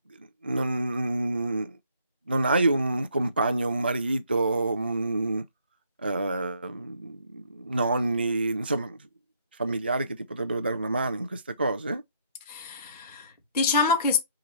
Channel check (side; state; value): both; inverted; correlation -0.67